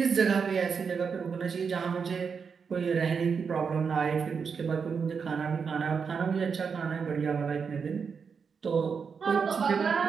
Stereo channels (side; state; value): left; quieter; 6.0 dB